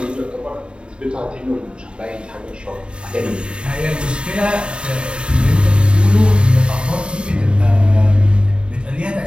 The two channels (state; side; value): late; left; 0.053 ms